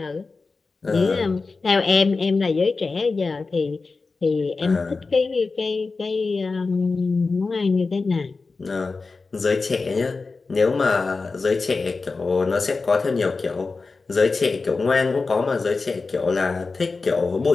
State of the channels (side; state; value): right; quieter; 4.1 dB